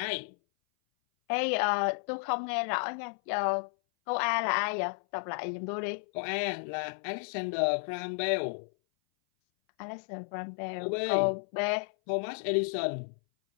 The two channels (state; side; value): silent; right; 56 dB below the other